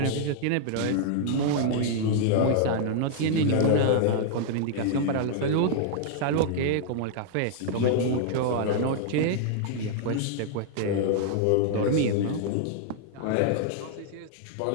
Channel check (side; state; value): both; different; correlation -0.01